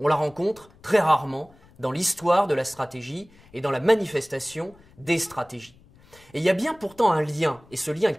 la rencontre très rarement dans l'histoire de la stratégie et dans la manifestation des stratégies. Et il y a bien pourtant un lien, et ce lien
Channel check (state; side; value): noise; left; rumble, 27 dB below the sound